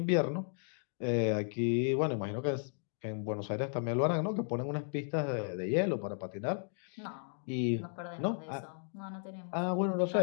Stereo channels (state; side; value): silent; right; 55 dB below the other